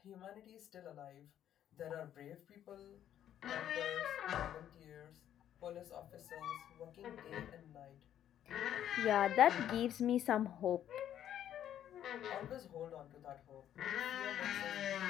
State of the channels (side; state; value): right; quieter; 10.7 dB